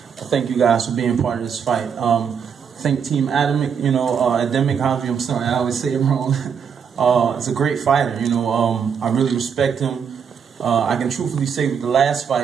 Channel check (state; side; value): quieter; left; 7.1 dB